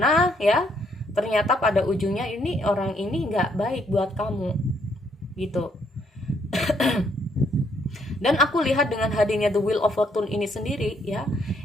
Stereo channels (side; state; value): both; normal; correlation 0.70